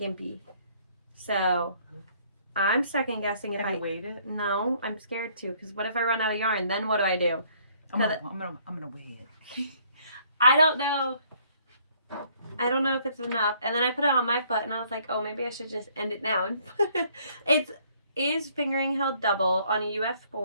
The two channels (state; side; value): inverted; both; correlation -0.63